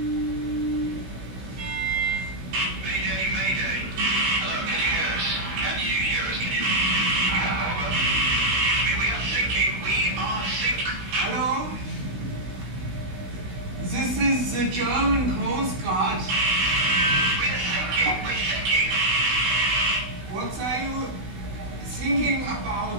Mayday, mayday. Hello, can you hear us? Can you hear us? Can you? Over. We are sinking. We are sinking. Hello? This is the German Coast Guard. We're sinking. We're sinking. What are you thinking about?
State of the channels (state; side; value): late; left; 17 ms